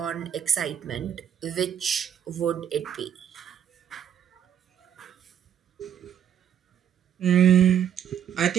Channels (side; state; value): left; quieter; 9.3 dB